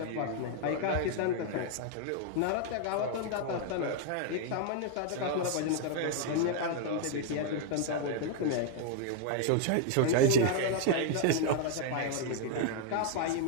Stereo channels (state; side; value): different; both; correlation 0.00